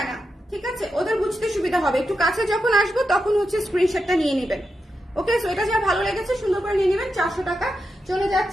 না, ঠিক আছে, ওদের বুঝতে সুবিধা হবে। একটু কাছে যখন আসবো তখন হচ্ছে স্ক্রিনশটটা নিয়ে নেবেন। ওকে, সো এটা যা ভালো লেগেছে সুন্দর করে নিয়ে নেবেন। 400 টাকা। চলে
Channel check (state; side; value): normal; both; correlation 0.87